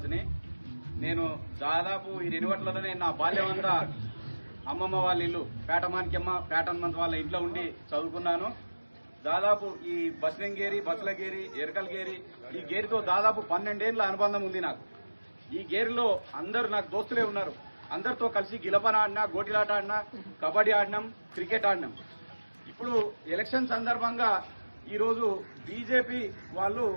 నేను దాదాపు ఈ రెనివట్లలోనే నా బాల్యం అంతా అమ్మమ్మ వాళ్ళ ఇల్లు పేటమానికమ్మ పేటన్మంత్ వాళ్ళ ఇంట్లో ఉండి చదువుకున్నాను. దాదాపు ఈ బస్లింగేరి, బస్లగేరి, ఎరకల్గేరి ఈ గేరితో దాదాపు 12 ఏళ్ల అనుబంధం ఉంది నాకు. ఈ గేరిలో అందరూ నాకు దోస్తులే ఉన్నారు. అందరితో కలిసి గిలపన ఆడినా, గోటిలాట ఆడినా, కబడ్డీ ఆడినాం, క్రికెట్ ఆడినాం. ఇప్పుడు ఎలక్షన్ సందర్భంగా ఈరోజు బీజేపీ వాళ్ళు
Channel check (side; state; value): both; inverted; correlation -1.00